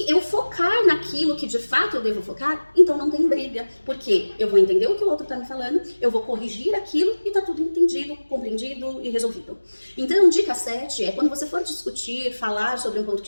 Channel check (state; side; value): inverted; both; correlation -1.00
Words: eu focar naquilo que de fato eu devo focar, então não tem briga. Porque eu vou entender o que o outro tá me falando, eu vou corrigir aquilo e tá tudo entendido, compreendido e resolvido. Então, dica 7 é, quando você for discutir, falar sobre um ponto